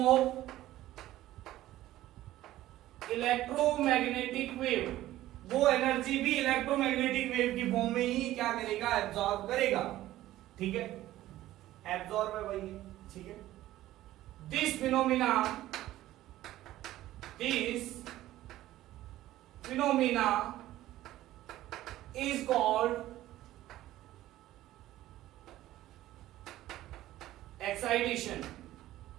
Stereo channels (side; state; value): left; quieter; 14.9 dB